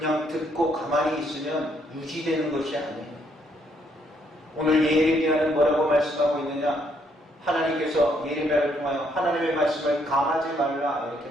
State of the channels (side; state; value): both; normal; correlation 0.71